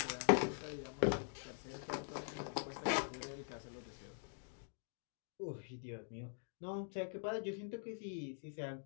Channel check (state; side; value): silent; right; digital silence